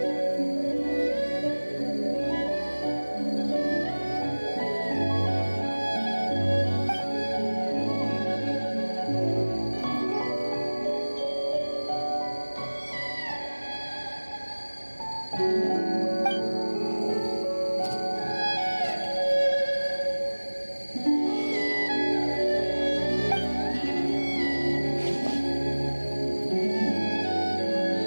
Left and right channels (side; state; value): both; inverted; correlation -1.00